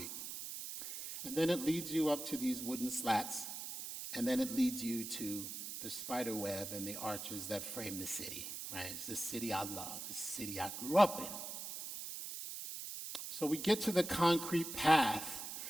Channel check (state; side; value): noise; right; hiss, 7 dB below the sound